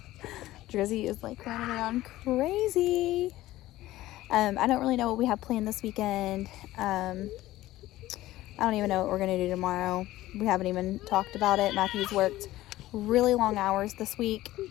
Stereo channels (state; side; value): quieter; right; 16.1 dB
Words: Drizzy is like running around crazy. I don't really know what we have planned this weekend. I don't even know what we're going to do tomorrow. We haven't even talked about it. Matthew's worked really long hours this week,